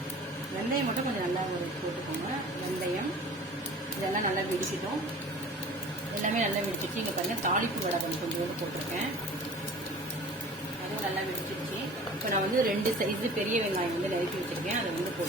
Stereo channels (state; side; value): normal; both; correlation 0.43